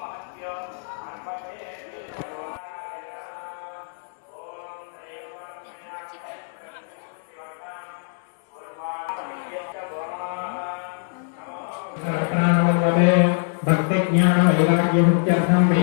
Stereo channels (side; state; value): right; silent; digital silence